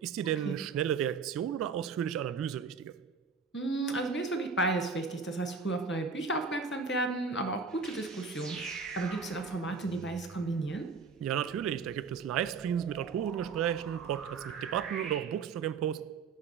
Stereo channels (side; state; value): left; quieter; 5.1 dB